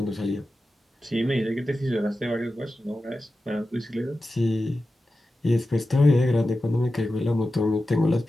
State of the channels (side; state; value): both; normal; correlation 0.93